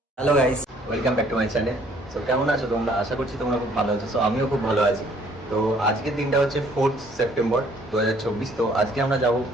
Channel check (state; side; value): normal; both; correlation 0.60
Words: Hello guys, welcome back to my channel. So কেমন আছো তোমরা? আশা করছি তোমরা খুব ভালো আছো। সো আমিও খুব ভালো আছি। তো আজকের দিনটা হচ্ছে 4 সেপ্টেম্বর 2024। তো আজকে আমরা যাব